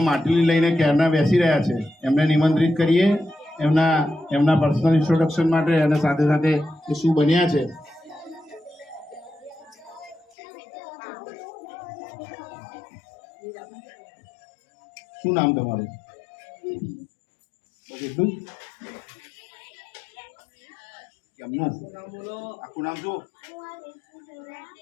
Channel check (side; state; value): right; drops out; at 10.4 s